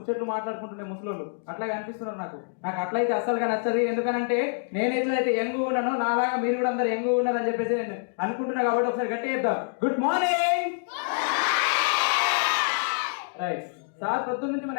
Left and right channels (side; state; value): right; silent; digital silence